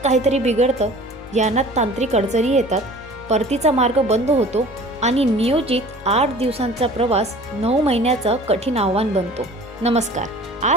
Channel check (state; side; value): normal; both; correlation 0.45